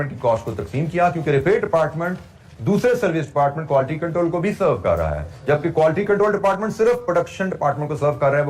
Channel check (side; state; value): both; identical; correlation 1.00